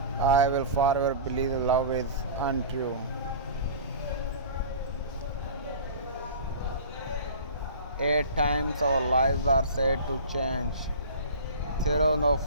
I will forever believe love is untrue. At times our lives are said to change through no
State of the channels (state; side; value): inverted; both; correlation -0.38